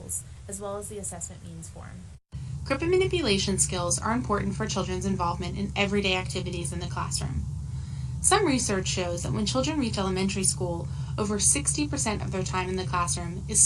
as well as the assessment means form. Grip and manipulation skills are important for children's involvement in everyday activities in the classroom. Some research shows that when children reach elementary school, over 60% of their time in the classroom is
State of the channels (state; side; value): identical; both; correlation 1.00